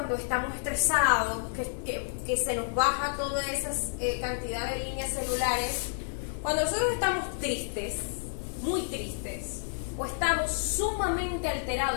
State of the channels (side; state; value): right; silent; digital silence